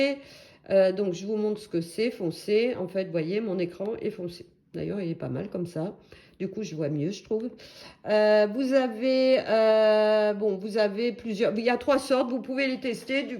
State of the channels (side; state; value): both; identical; correlation 1.00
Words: Donc, je vous montre ce que c'est, foncé. En fait, vous voyez, mon écran est foncé. D'ailleurs, il est pas mal comme ça. Du coup, je vois mieux, je trouve. Vous avez plusieurs... Il y a 3 sortes, vous pouvez les tester,